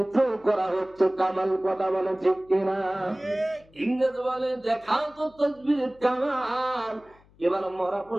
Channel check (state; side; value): noise; left; hum, 29 dB below the sound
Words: করা হচ্ছে কামাল। কথা বলে ঠিক কিনা? ইংরেজ বলে, দেখাও তো তাসবিহের কামাল। এবার মরা